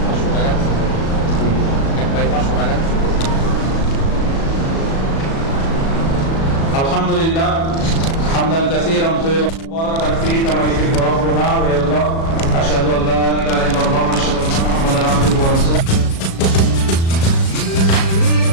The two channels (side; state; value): right; late; 36 ms